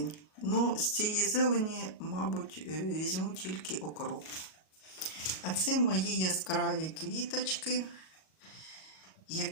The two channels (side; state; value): right; late; 38 ms